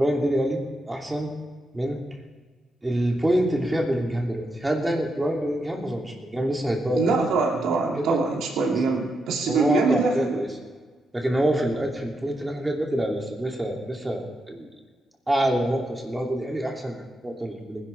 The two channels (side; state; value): both; normal; correlation 0.83